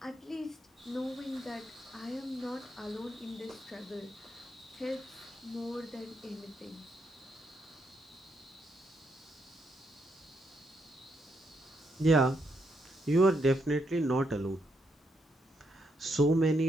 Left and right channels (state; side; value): normal; both; correlation 0.79